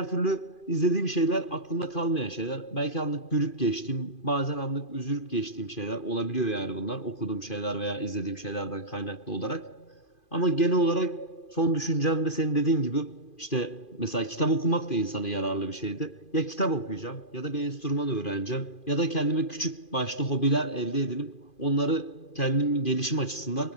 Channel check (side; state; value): right; late; 2.5 ms